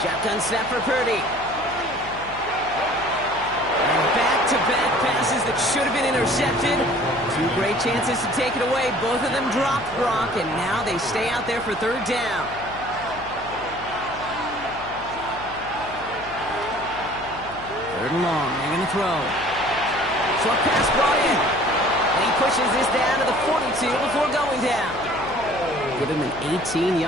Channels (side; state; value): left; noise; hum, 17 dB below the sound